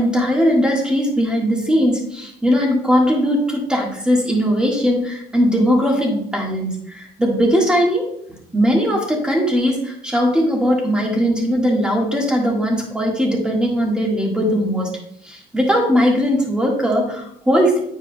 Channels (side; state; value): both; normal; correlation 0.76